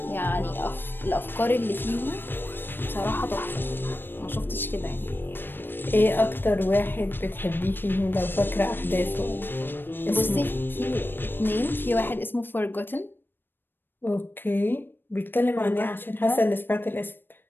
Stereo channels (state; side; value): late; right; 0.097 ms